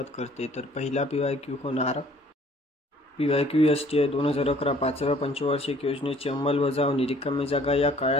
करते। तर पहिला PYQ होणार PYQ STI 2011 5व्या पंचवार्षिक योजनेची अंमलबजावणी रिकामी जागा या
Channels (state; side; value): normal; both; correlation 0.57